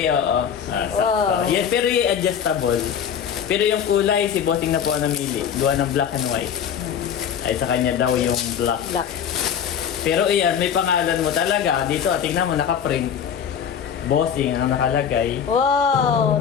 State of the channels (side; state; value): right; quieter; 8.1 dB